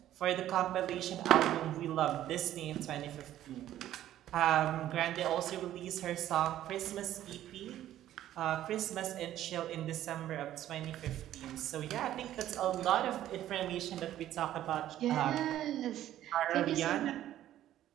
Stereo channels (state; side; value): quieter; left; 12.6 dB